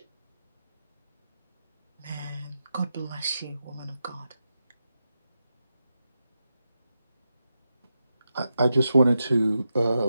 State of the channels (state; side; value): inverted; both; correlation -0.88